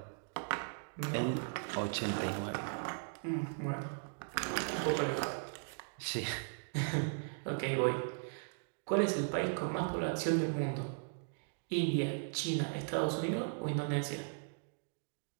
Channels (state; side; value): silent; left; digital silence